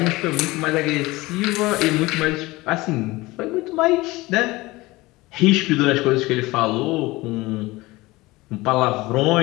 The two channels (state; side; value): quieter; right; 20.7 dB